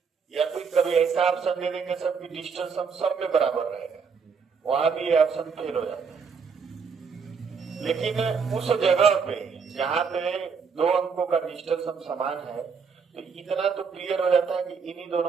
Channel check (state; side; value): quieter; left; 5.7 dB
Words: या कोई कभी ऐसा ऑप्शन दे देंगे सबकी डिजिटल सम सब में बराबर रहेगा, वहां भी ये ऑप्शन फेल हो जाता है। लेकिन उस जगह पे जहां पे दो अंकों का डिजिटल सम समान है, तो इतना तो क्लियर हो जाता है कि इन्हीं